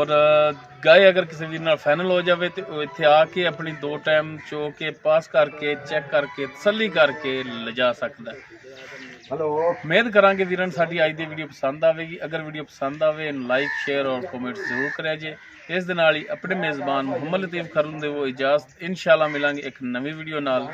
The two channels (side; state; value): both; identical; correlation 1.00